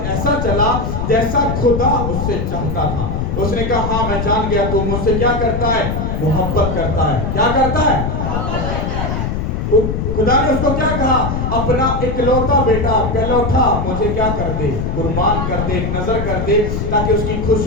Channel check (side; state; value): left; noise; rumble, 2 dB below the sound